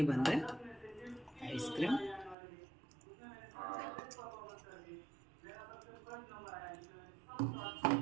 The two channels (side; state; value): left; drops out; at 2.4 s